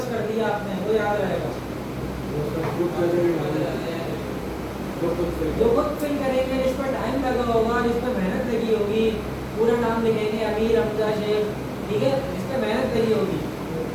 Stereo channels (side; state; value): both; identical; correlation 1.00